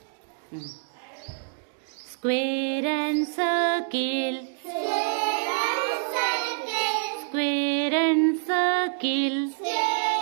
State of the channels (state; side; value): silent; left; digital silence